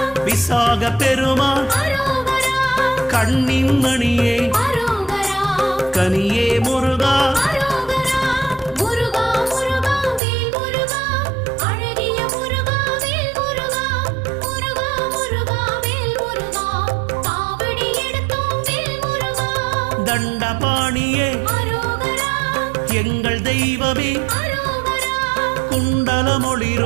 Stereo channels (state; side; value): drops out; left; at 10.2 s